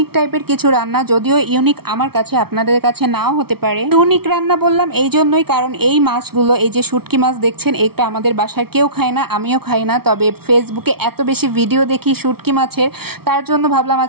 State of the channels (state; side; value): late; left; 0.95 ms